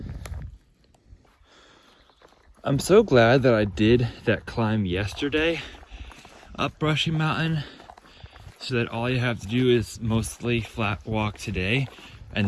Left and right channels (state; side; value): identical; both; correlation 1.00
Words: I'm so glad that I did that climb yesterday up Brushy Mountain, so that all you have to do is mostly flat walk today